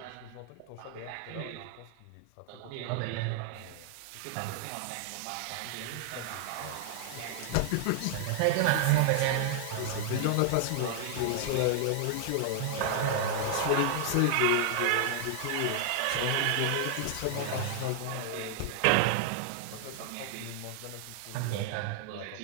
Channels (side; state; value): both; different; correlation 0.00